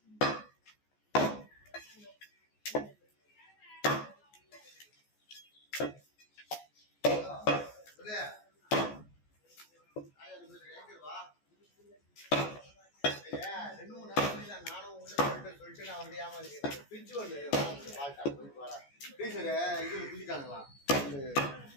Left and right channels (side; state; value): right; late; 14 ms